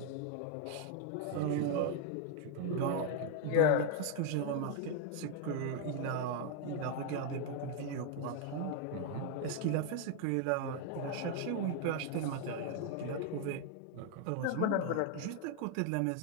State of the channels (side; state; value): both; different; correlation 0.00